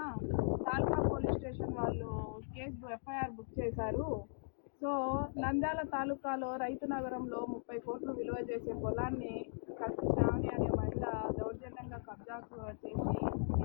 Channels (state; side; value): silent; right; digital silence